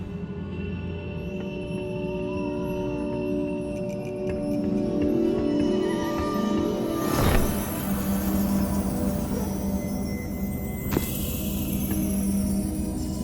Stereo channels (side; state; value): both; identical; correlation 1.00